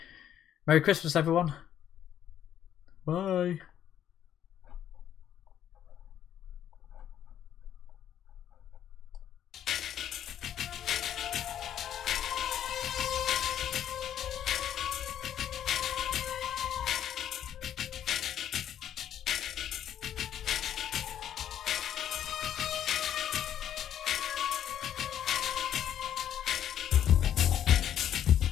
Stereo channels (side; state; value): right; quieter; 10.3 dB